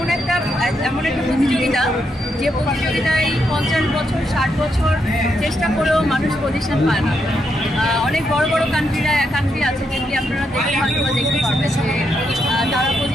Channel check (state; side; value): normal; both; correlation 0.80